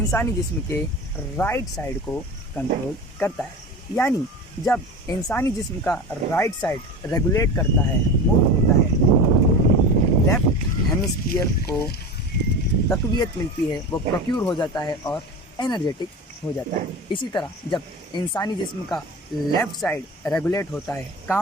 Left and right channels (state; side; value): normal; both; correlation 0.30